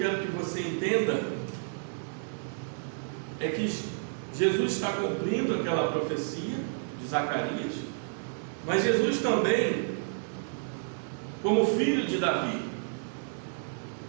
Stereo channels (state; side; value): silent; left; digital silence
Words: que você entenda é que Jesus está cumprindo aquela profecia de Zacarias, mas Jesus também, como filho de Davi,